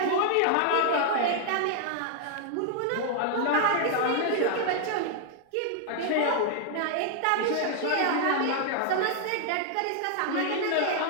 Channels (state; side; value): different; both; correlation -0.01